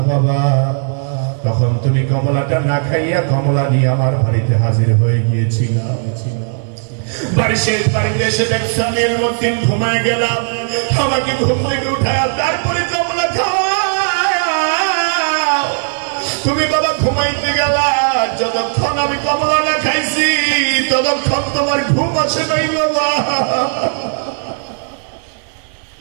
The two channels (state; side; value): silent; left; digital silence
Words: বাবা। তখন তুমি কমলাটা না খাইয়া কমলা নিয়ে আমার বাড়িতে হাজির হয়ে গিয়েছিল। বাড়িতে এসে দেখছি আমি ইলমুদ্দিন ঘুমায় গেলাম। আমাকে ঘুম থেকে উঠায় তারপরে কমলা খাওয়া। তুমি বাবা ঘুমাইতে গেলা, যতক্ষণ আমি কমলা না খাইছি ততক্ষণ তোমার ঘুম আসে নাই বাবা।